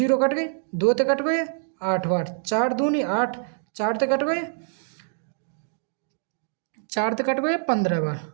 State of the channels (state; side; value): silent; left; 62 dB below the other